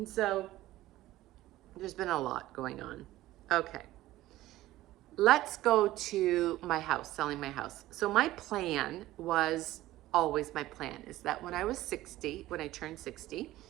so there's been a lot going on. Okay. Let's go to my house, selling my house. So my plan was always my plan is that when I turned 60,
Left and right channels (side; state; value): left; quieter; 16.0 dB